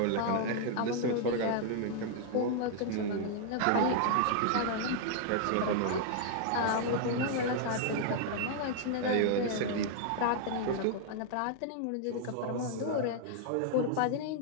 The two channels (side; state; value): both; different; correlation -0.01